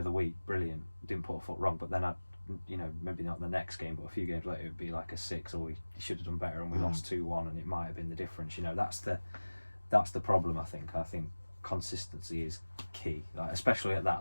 the week, brilliant. Didn't put a foot wrong. But then I'd, maybe not the next game, but a few games later, it would be like a 6, or he should have done better and we lost 2-1 and it might have been the difference. That's the problem, I think. I think consistency is key, like, especially at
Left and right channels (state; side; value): inverted; both; correlation -1.00